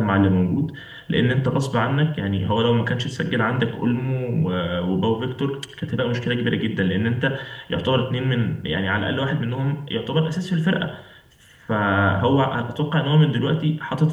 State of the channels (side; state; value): both; identical; correlation 1.00